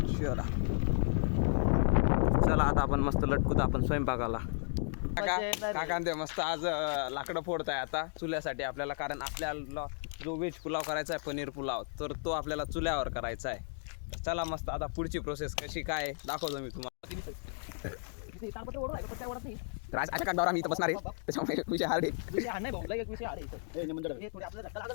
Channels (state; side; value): silent; right; 55 dB below the other